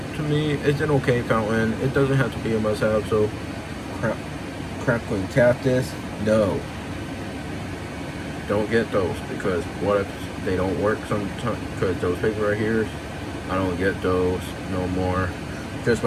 To me, it's an okay fountain. It doesn't have to be a must-have. So crackling cactus, no, don't get those, because what if they don't work sometimes? Because those paper right here, I don't get those no more. Just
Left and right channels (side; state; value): both; identical; correlation 1.00